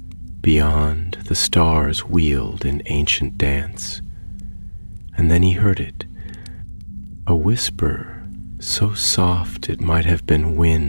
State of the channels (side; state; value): both; inverted; correlation -1.00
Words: Beyond, the stars wheeled in ancient dance, and then he heard it, a whisper so soft it might have been